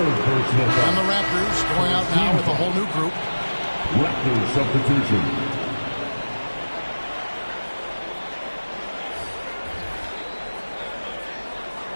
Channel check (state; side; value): inverted; both; correlation -1.00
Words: personal foul. And the Raptors going out now with a whole new group. Raptors substitution.